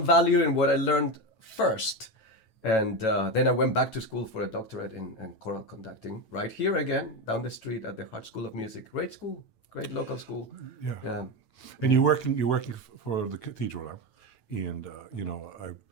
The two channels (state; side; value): late; right; 9.1 ms